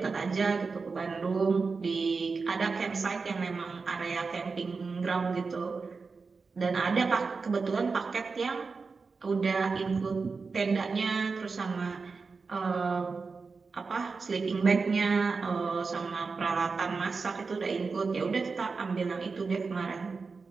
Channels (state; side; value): quieter; left; 4.6 dB